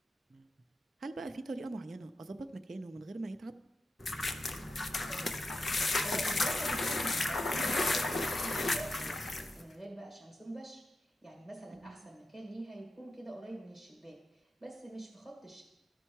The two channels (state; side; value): normal; both; correlation 0.89